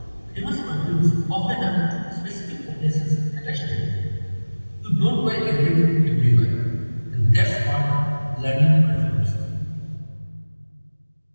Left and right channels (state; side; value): inverted; both; correlation -1.00